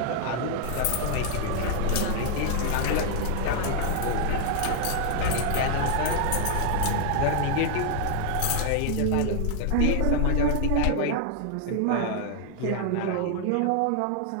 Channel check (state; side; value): different; both; correlation 0.00